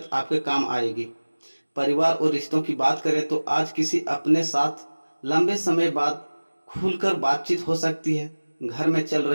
आपके काम आएगी। परिवार और रिश्तों की बात करें तो आज किसी अपने साथ लंबे समय बाद खुलकर बातचीत हो सकती है। घर में चल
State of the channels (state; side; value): inverted; both; correlation -1.00